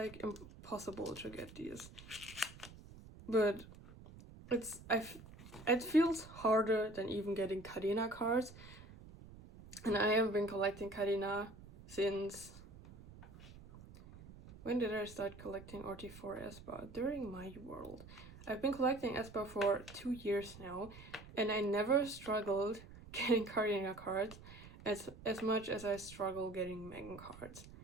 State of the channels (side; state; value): right; noise; rumble, 17 dB below the sound